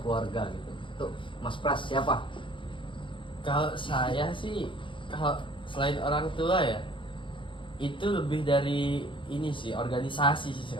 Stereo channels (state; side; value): late; right; 0.24 ms